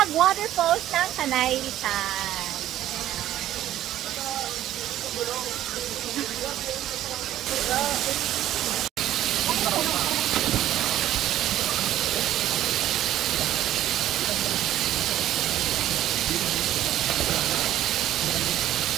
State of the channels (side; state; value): left; quieter; 12.9 dB